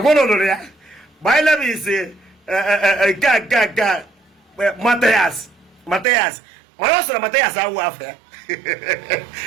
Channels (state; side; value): drops out; left; at 6.1 s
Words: lụrụ ya. My name is Mathias. Mana ọ sịrị Mathias awụ afọ ya